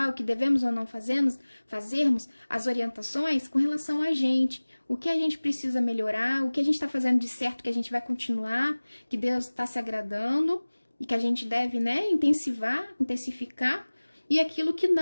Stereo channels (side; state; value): both; inverted; correlation -1.00